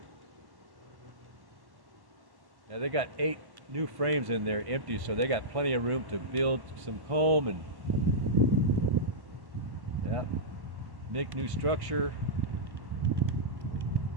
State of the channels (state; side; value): late; left; 1.1 ms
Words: Now they got 8 new frames in there empty, so they got plenty of room to build some comb and make new structure.